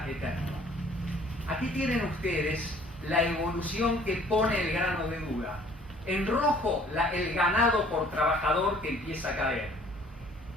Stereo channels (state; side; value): normal; both; correlation 0.55